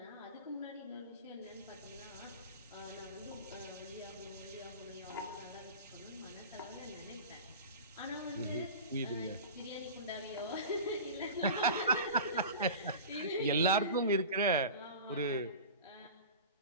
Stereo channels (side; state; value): both; inverted; correlation -0.34